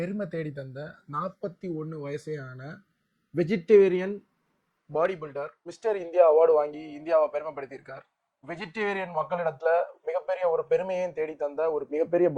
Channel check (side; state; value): both; identical; correlation 1.00